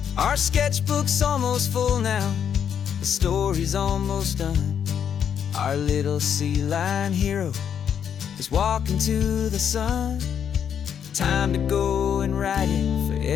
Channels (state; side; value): quieter; right; 8.3 dB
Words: Our sketchbook's almost full now, the story's almost done. Our little sea lion hero is walking to the sun. Time to go and write it for